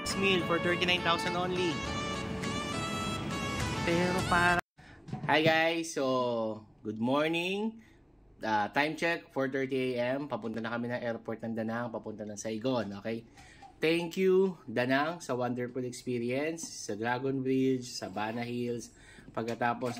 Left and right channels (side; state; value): both; identical; correlation 1.00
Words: This meal for 39,000 only. Pero para... Hi guys, so good morning. Time check, 4:30 AM. Papunta na kami ng airport ng Danang, papunta ng Saigon, okay? Thank you, Danang, sa wonderful experience, sa Dragon Bridge, sa Bana Hills. Pagkatapos